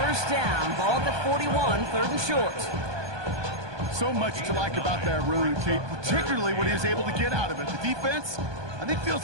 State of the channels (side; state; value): left; late; 1.2 ms